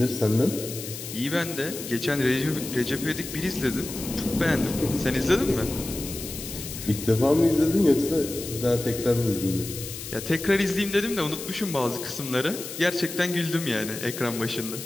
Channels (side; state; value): left; noise; hiss, 9 dB below the sound